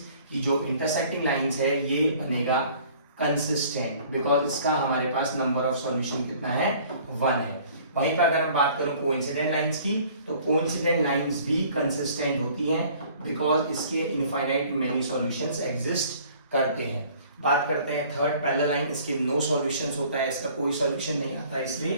कि जो इंटरसेक्टिंग लाइंस है ये बनेगा कंसिस्टेंट, बिकॉज इसका हमारे पास नंबर ऑफ सॉल्यूशन कितना है, 1 है। वहीं पर अगर हम बात करूं कोइंसिडेंट लाइंस की, तो कोइंसिडेंट लाइंस भी कंसिस्टेंट होती हैं, बिकॉज इसके इनफाइनाइट मेनी सॉल्यूशंस एग्जिस्ट करते हैं। बात करते हैं थर्ड पैरेलल लाइन, इसके नो सॉल्यूशंस होता है, इसका कोई सॉल्यूशन नहीं आता,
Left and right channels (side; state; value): both; inverted; correlation -0.53